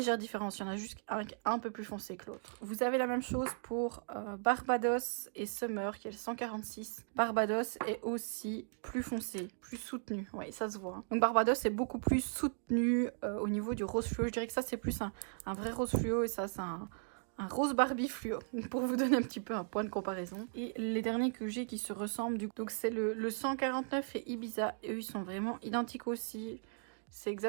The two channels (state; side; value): silent; left; digital silence